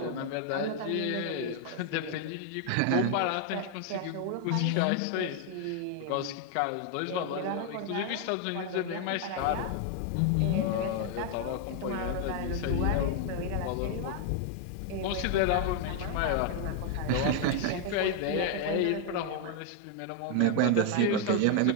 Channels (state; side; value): different; both; correlation 0.00